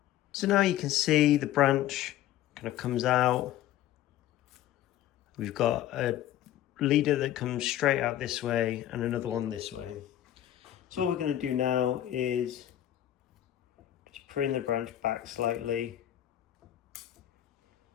So now you can see the branch kind of comes out. We've got a leader that comes straight out this way and another one this way. So what we're going to do now is just prune the branch back slightly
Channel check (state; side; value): quieter; right; 12.6 dB